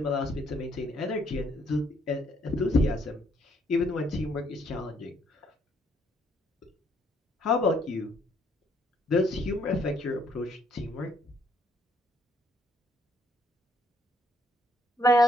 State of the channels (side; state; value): both; normal; correlation 0.69